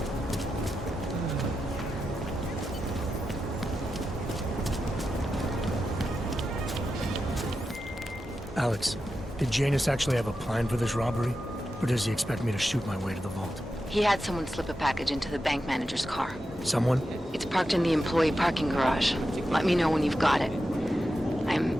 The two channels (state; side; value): normal; both; correlation 0.89